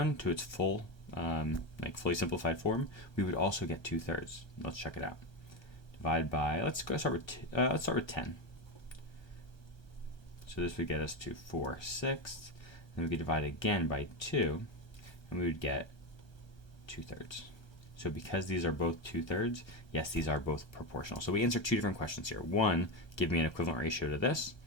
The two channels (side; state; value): right; late; 1.3 ms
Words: to its full, fully simplified form, we would also get 2/3. Let's check it out. Divide by, let's start with 10. So this would get us to 4/6. Then we could divide again by 2, and we would get 2/3. So because these are both 2/3, yes, these are both proportional. So we answer 2 different questions here. One, give me an equivalent ratio to this,